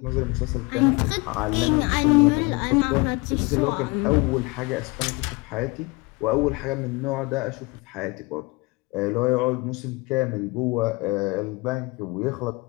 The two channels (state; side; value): quieter; right; 25.8 dB